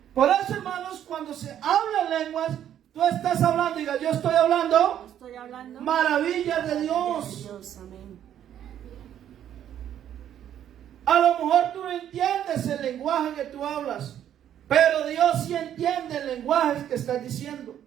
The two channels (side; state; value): left; quieter; 10.4 dB